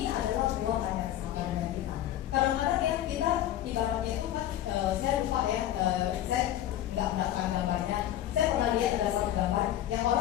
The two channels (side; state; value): right; quieter; 12.4 dB